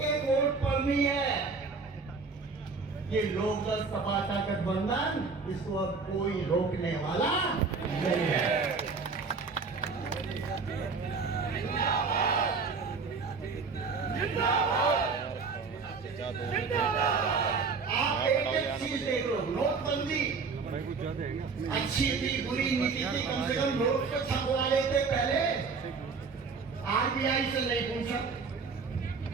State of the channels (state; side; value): quieter; left; 4.7 dB